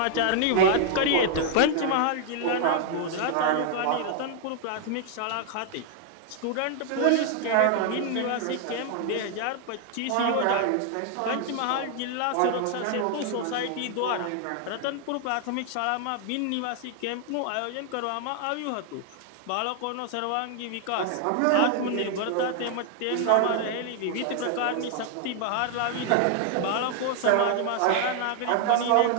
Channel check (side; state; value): both; different; correlation 0.00